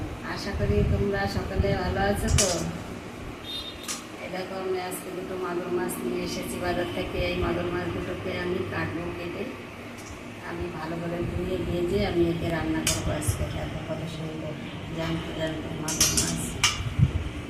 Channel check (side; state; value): both; identical; correlation 1.00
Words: আশা করি তোমরা সকলে ভালো আছো। তো এই দেখো, আমি আজকে দুটো মাগুর মাছ নিয়ে এসেছি বাজার থেকে। এই মাগুর মাছ দুটোকে আমি কাটবো, কেটে আমি ভালো করে ধুয়ে ভেজে আমি একে রান্না করবো আজকে। খেতে কত সুন্দর জ্যান্ত জ্যান্ত মাগুর মাছ।